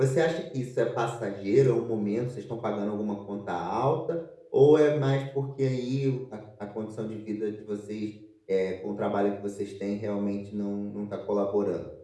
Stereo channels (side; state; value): both; identical; correlation 1.00